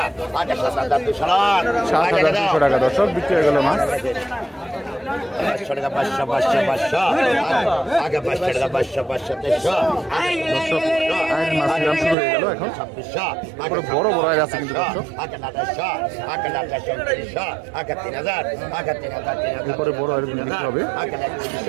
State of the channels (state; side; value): drops out; left; at 12.2 s